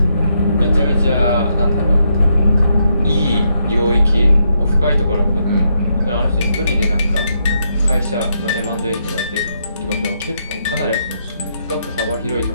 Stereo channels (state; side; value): inverted; both; correlation -0.78